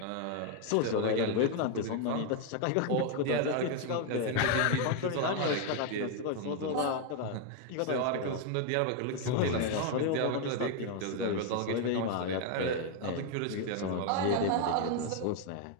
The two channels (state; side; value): different; both; correlation 0.01